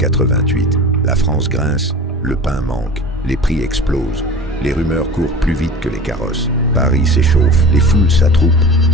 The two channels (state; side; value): normal; both; correlation 0.37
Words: La France grince, le pain manque, les prix explosent. Les rumeurs courent plus vite que les carrosses. Paris s'échauffe, les foules s'attroupent,